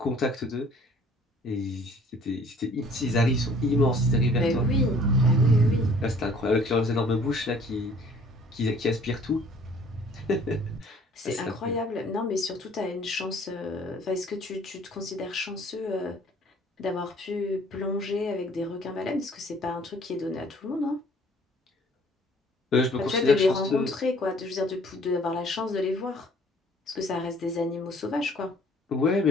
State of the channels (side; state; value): both; normal; correlation 0.55